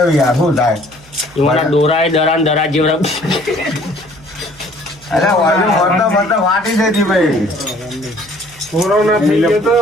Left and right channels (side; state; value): right; noise; hum, 25 dB below the sound